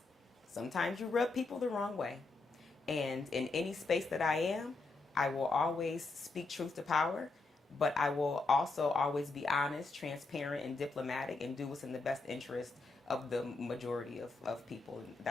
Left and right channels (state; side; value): quieter; right; 3.6 dB